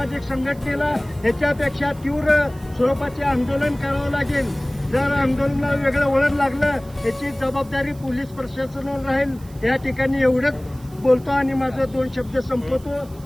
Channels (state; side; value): noise; right; hiss, 25 dB below the sound